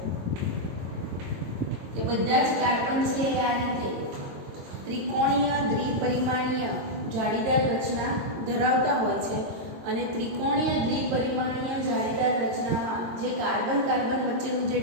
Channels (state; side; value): late; left; 22 ms